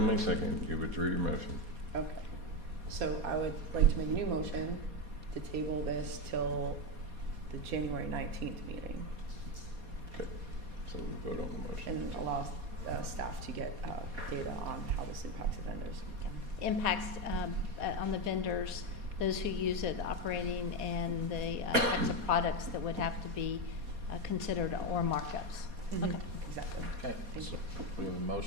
second, you withdrew your motion. Okay. So I would like to make a new motion to table this till the January 19th meeting Okay, so we vote on the motion. and allow staff to get data on how this impacts the vendors. Impacts on the vendors, those who use it, operating, and the types of products that would have to be considered or markups. Mhm. Okay. Exactly. Okay, Thank so you. we have a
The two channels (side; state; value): left; late; 4.2 ms